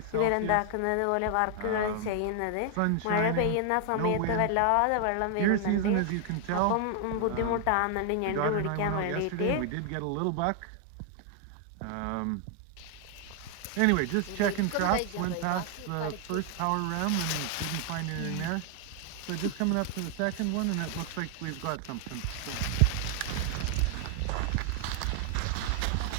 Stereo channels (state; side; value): different; both; correlation 0.00